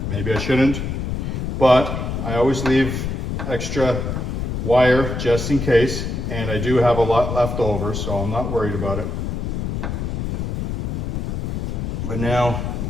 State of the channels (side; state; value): left; noise; rumble, 3 dB below the sound